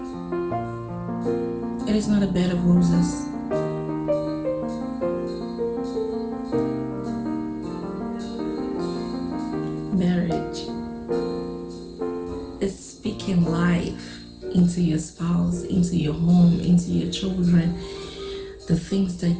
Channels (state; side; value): identical; both; correlation 1.00